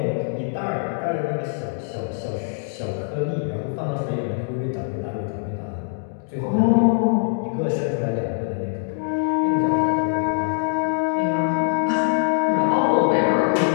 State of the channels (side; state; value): right; silent; digital silence